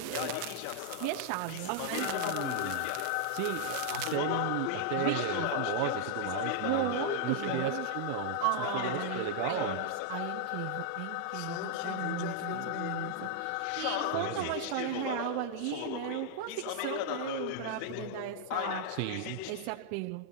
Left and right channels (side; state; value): both; different; correlation -0.01